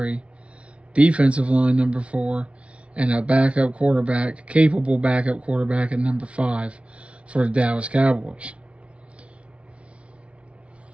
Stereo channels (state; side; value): late; left; 0.061 ms